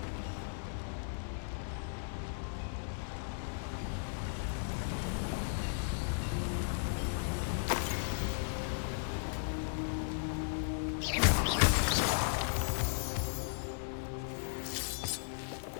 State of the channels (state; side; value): silent; right; 54 dB below the other